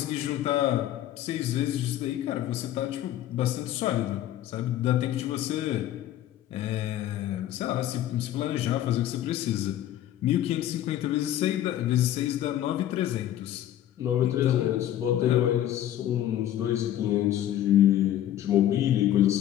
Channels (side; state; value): right; quieter; 12.2 dB